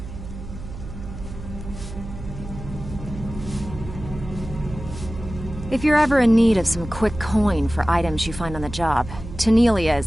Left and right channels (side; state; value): right; noise; hum, 11 dB below the sound